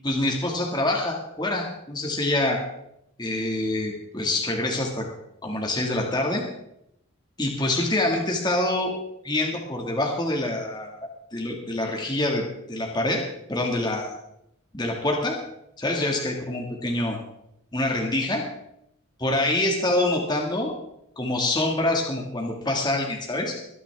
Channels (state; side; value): normal; both; correlation 0.33